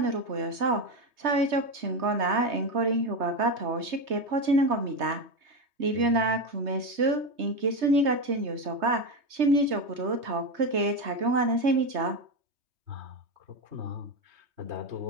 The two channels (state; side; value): late; left; 3.3 ms